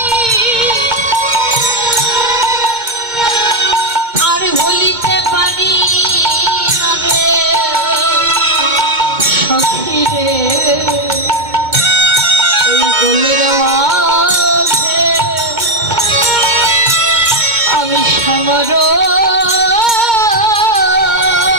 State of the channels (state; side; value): late; left; 2.2 ms